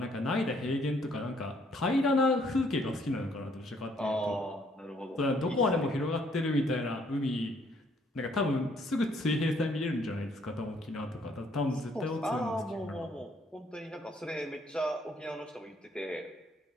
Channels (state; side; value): normal; both; correlation 0.66